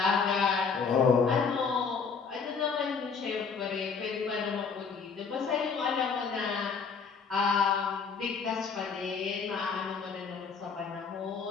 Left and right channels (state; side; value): quieter; right; 5.6 dB